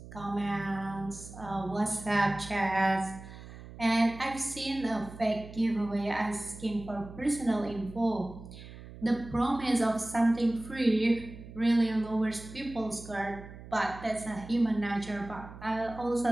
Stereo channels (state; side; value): noise; right; hum, 15 dB below the sound